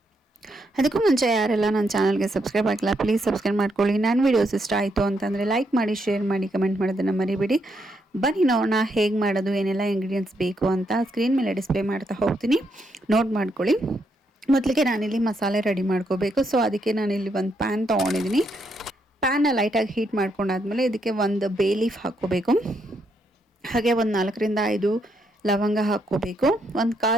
ಅದಕ್ಕೂ ಮುಂಚೆ ಯಾರೆಲ್ಲ ನನ್ನ ಚಾನಲ್ಗೆ ಸಬ್ಸ್ಕ್ರೈಬ್ ಆಗಿಲ್ಲ ಪ್ಲೀಸ್ ಸಬ್ಸ್ಕ್ರೈಬ್ ಮಾಡ್ಕೊಳ್ಳಿ. ನಾನು ವಿಡಿಯೋಸ್ ಇಷ್ಟ ಆಯಿತು ಅಂತಂದರೆ ಲೈಕ್ ಮಾಡಿ, ಶೇರ್ ಮಾಡಿ, ಕಮೆಂಟ್ ಮಾಡೋದನ್ನು ಮರಿಬೇಡಿ. ಬನ್ನಿ ನೋಡೋಣ ಹೇಗೆ ಮಾಡೋದು, ಏನೆಲ್ಲ ಇಂಗ್ರೀಡಿಯೆಂಟ್ಸ್ ಬೇಕು ಅಂತ ಸ್ಕ್ರೀನ್ ಮೇಲೆ ಡಿಸ್ಪ್ಲೇ ಮಾಡ್ತಾ ಹೋಗ್ತೀನಿ, ನೋಟ್ ಮಾಡ್ಕೊಳ್ಳಿ. ಮೊದಲಿಗೆ ನಾನಿಲ್ಲಿ ಮಸಾಲೆ ರೆಡಿ ಮಾಡ್ಕೋಬೇಕು. ಸೊ ಅದಕ್ಕೆ ನಾನಿಲ್ಲಿ ಒಂದು ಪ್ಯಾನ್ ತೊಗೊಂಡಿದ್ದೀನಿ. ಪ್ಯಾನ್ನ ಲೈಟಾಗಿ ಹೀಟ್ ಮಾಡ್ಕೊಂಡಾದ್ಮೇಲೆ ಇದಕ್ಕೆ ಒಂದು ಬೇ ಲೀಫ್ ಹಾಕ್ಕೋಬೇಕು. ಹಾಗೆ ಒಂದು 4ರಿಂದ 5 ಲವಂಗ ಹಾಕ್ಕೋಬೇಕು. ಒಂದು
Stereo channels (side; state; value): both; normal; correlation 0.77